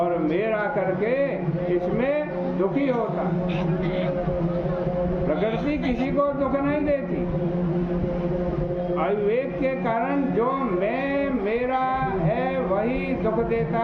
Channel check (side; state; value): both; identical; correlation 1.00